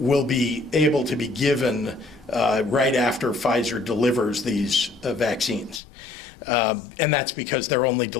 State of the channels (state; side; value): drops out; right; at 5.8 s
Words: be able to be given right after Pfizer delivers these vaccines. And that's because they're only